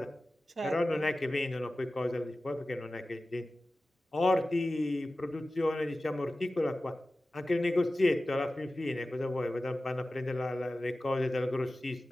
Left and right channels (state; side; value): normal; both; correlation 0.95